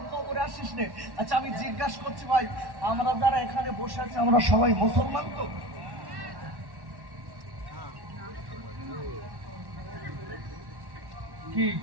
কবরে আসিস নে। আচ্ছা, আমি জিজ্ঞাসা করছি ভাই, আমরা যারা এখানে বসে আছি, আমরা সবাই মুসলমান তো? কি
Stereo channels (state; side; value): late; left; 1.1 ms